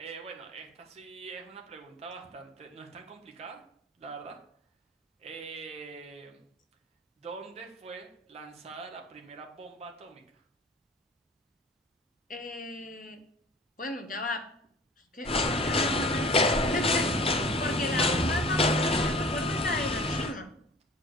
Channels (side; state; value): both; normal; correlation 0.44